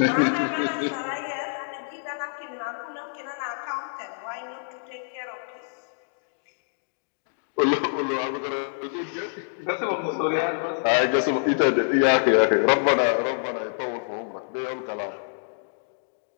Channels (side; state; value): right; silent; digital silence